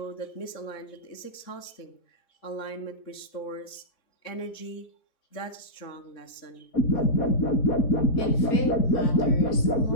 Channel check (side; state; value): right; late; 3.7 ms